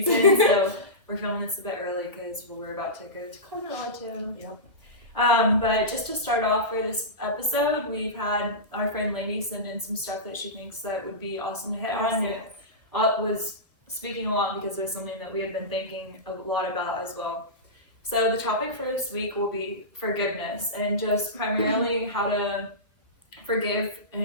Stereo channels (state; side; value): late; right; 1.4 ms